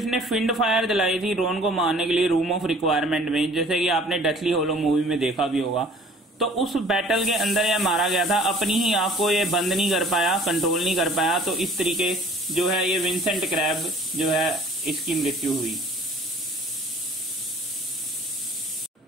फिंड फायर जलाई थी रोन को मारने के लिए रूम ऑफ रिक्वायरमेंट में, जैसे कि आपने डेथली होलो मूवी में देखा भी होगा, तो उस बैटल के अंदर यह मारा गया था। अपनी ही आंख को ये बंद नहीं कर पाया, कंट्रोल नहीं कर पाया। तो इस तरीके जो है ये विंसेंट क्रैब जो है इसकी मृत्यु हुई।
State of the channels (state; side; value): normal; both; correlation 0.51